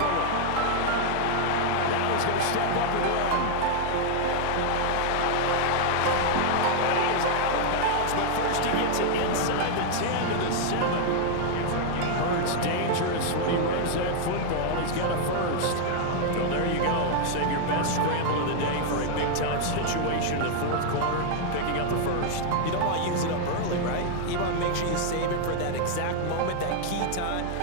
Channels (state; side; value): different; both; correlation -0.01